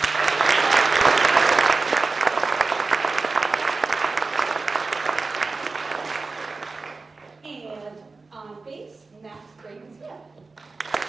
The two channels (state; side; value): quieter; left; 3.9 dB